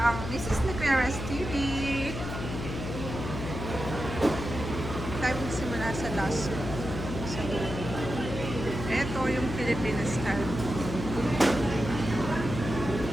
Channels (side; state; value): left; noise; hum, 6 dB below the sound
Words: ang Mrs. Niqueras TV. Tayo magsimula sa last sa dulo. Ito yung Filipino style.